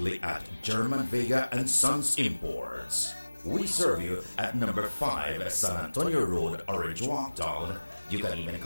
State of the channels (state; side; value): inverted; both; correlation -1.00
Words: at German Vega and Sons Imports. We serve you at number 5 San Antonio Road, Orange Walk Town, You can even